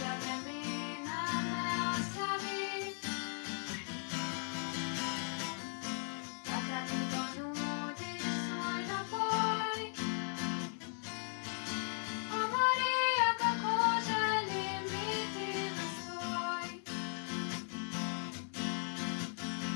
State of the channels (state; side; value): silent; right; 53 dB below the other